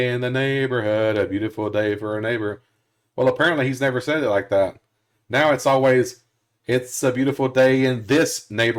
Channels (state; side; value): identical; both; correlation 1.00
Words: in the neighborhood, a beautiful day for a neighbor. Well, apparently he's never said it like that. Now it's always, it's a beautiful day in this